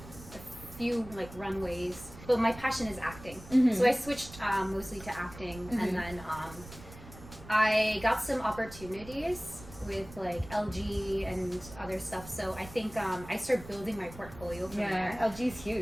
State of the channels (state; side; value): noise; right; rumble, 16 dB below the sound